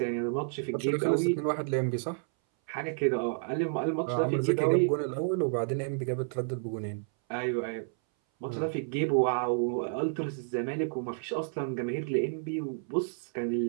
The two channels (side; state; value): left; silent; 58 dB below the other